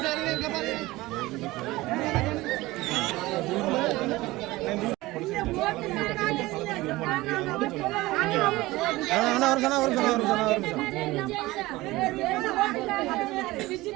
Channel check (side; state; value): left; quieter; 19.3 dB